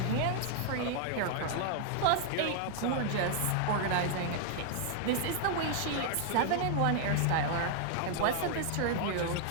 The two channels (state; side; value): different; both; correlation -0.01